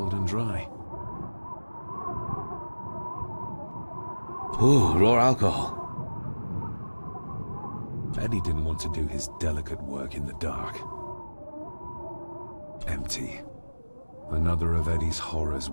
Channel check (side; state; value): both; inverted; correlation -1.00